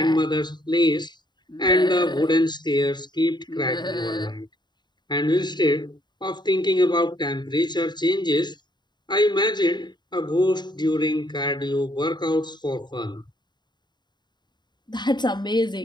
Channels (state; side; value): late; right; 0.21 ms